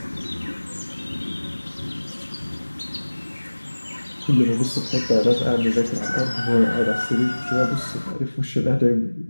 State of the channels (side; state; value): both; inverted; correlation -1.00